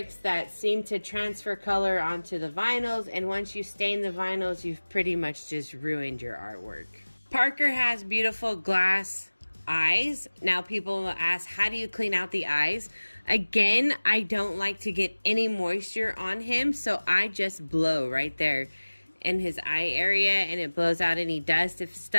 that seem to transfer color onto the vinyls. And once you stain the vinyls, you've pretty much just ruined your artwork. Parker has beautiful glass eyes. Now people will ask, how do you clean out the eyes? Again, I don't like to get any moisture on him, so I just blow right there in his eye area, and it blows out any dust. If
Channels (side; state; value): both; inverted; correlation -1.00